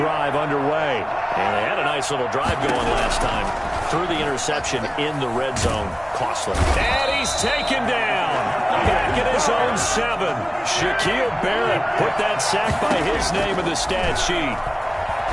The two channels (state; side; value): identical; both; correlation 1.00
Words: underway. And they had a nice little drive going last time. Threw the interception in the red zone. Costly. And he's taken down. Back at his own 7. Shaquille Barrett put that sack by his name in the stat sheet.